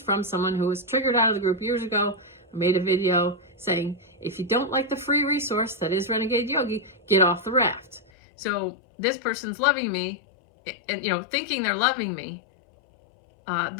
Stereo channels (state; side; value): drops out; right; at 8.0 s